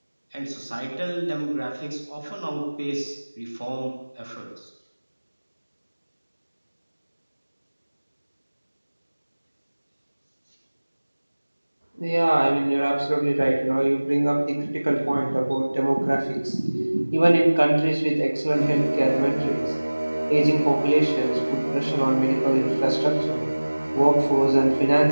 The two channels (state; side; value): inverted; both; correlation -1.00